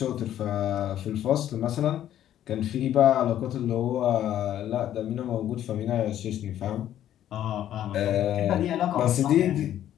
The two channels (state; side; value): quieter; right; 11.5 dB